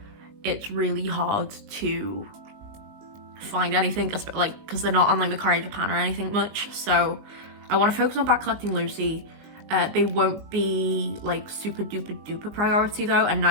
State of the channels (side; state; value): left; late; 19 ms